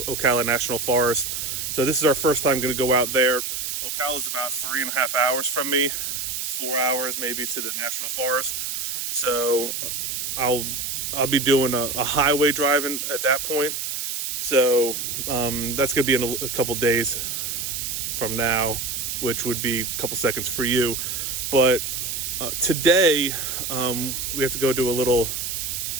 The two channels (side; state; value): right; noise; hiss, 3 dB below the sound